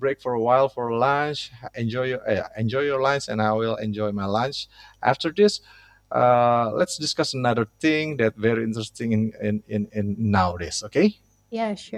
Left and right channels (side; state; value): both; identical; correlation 1.00